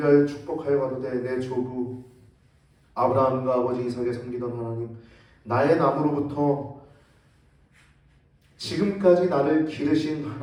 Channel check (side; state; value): both; identical; correlation 1.00